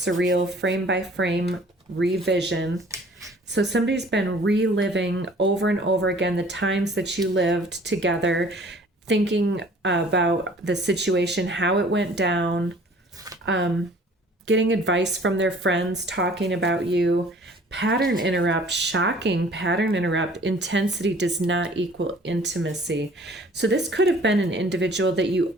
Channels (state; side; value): normal; both; correlation 0.52